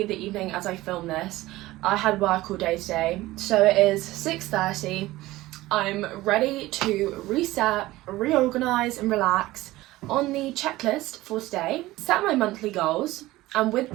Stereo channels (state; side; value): quieter; left; 17.8 dB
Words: the evening as I film this. I had work all day today, so it is 6:30. I'm ready to reset, reorganise and relax. On the checklist for today, set my monthly goals, and with